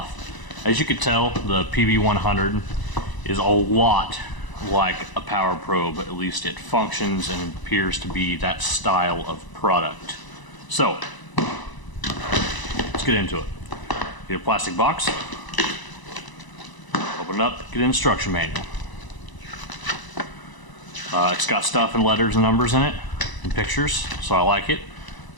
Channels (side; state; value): right; late; 1.0 ms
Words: As you can tell, the PB100 is a lot like a power probe. At least it functions and appears to be that style of product. So, let's get into it. Get a plastic box, open it up, get an instruction manual. It's got stuff and letters and numbers in it, and pictures, so I like it.